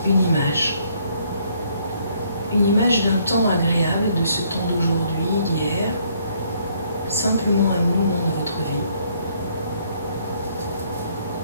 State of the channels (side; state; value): both; inverted; correlation -0.67